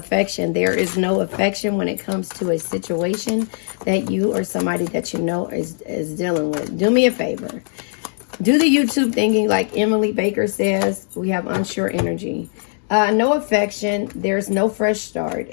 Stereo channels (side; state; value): right; silent; digital silence